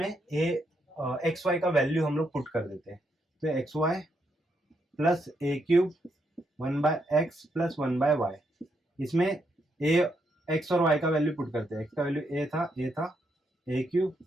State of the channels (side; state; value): both; normal; correlation 0.78